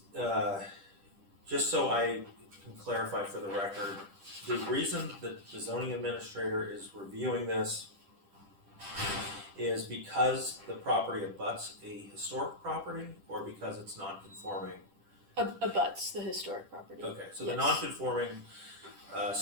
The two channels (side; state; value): left; late; 10 ms